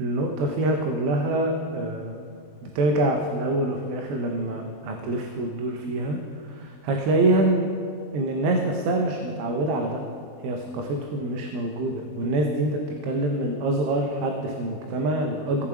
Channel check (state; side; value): late; left; 20 ms